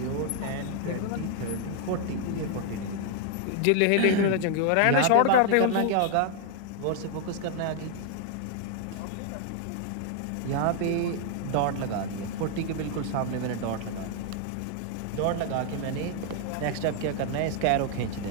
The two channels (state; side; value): different; both; correlation 0.00